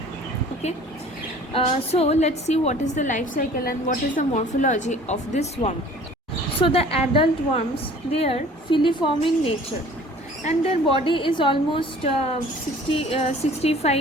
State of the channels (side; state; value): both; normal; correlation 0.49